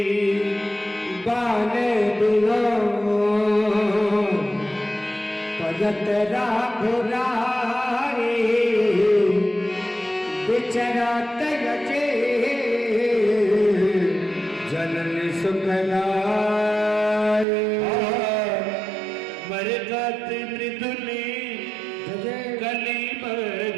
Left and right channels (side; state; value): left; drops out; at 17.4 s